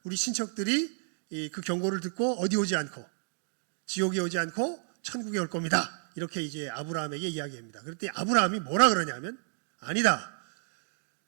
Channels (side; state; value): left; silent; 57 dB below the other